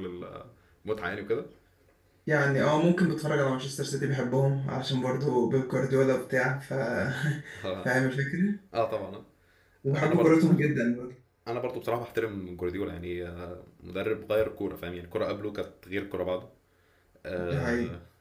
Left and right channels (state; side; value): identical; both; correlation 1.00